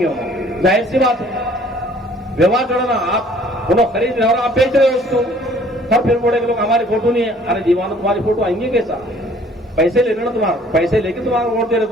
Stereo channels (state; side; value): normal; both; correlation 0.56